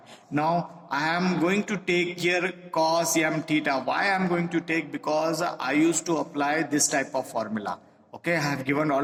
Now I am going to take here cos m theta. Why I am going to take? Because I used to apply this type of formula. Okay, I have given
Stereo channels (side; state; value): both; identical; correlation 1.00